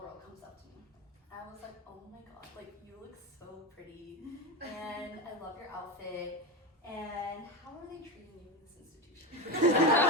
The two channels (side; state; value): both; normal; correlation 0.16